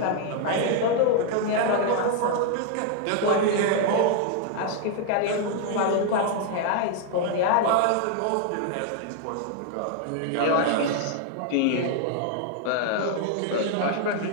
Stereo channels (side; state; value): both; different; correlation 0.00